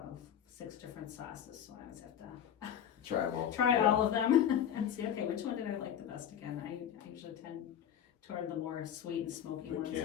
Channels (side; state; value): right; quieter; 9.4 dB